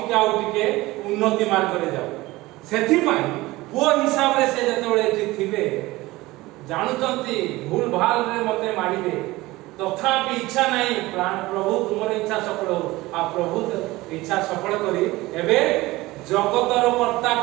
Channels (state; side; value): quieter; left; 19.5 dB